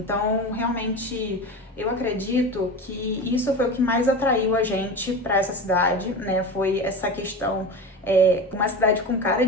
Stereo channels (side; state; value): both; normal; correlation 0.27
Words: realmente, eu acredito que isso foi o que mais atraiu a gente pra essa cidade, né? Foi essa questão, uma cidade com cara